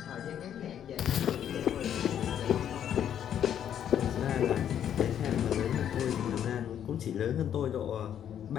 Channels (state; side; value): quieter; right; 9.6 dB